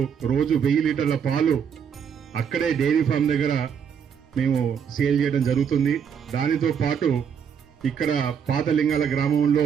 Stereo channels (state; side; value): quieter; left; 7.4 dB